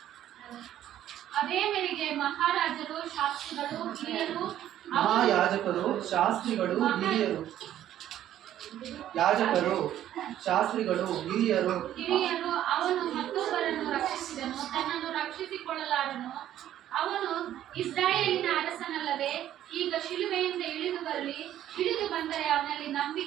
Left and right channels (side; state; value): left; quieter; 11.9 dB